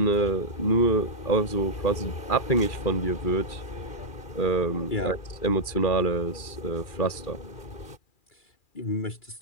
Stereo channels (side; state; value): right; late; 2.4 ms